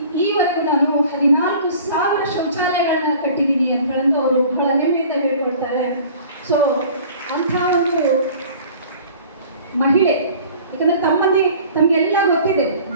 ಈವರೆಗೂ ನಾನು 14,000 ಶೌಚಾಲಯಗಳನ್ನ ಕಟ್ಟಿದ್ದೀನಿ ಅಂತೇಳಂದು ಅವರು ಬಹಳ ಹೆಮ್ಮೆಯಿಂದ ಹೇಳ್ಕೊಳ್ತಾರೆ. ಸೊ ಅಂಥ ಒಂದು ಮಹಿಳೆ, ಯಾಕಂದರೆ ತಮಗೆಲ್ಲ ಗೊತ್ತಿದೆ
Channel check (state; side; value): inverted; both; correlation -0.47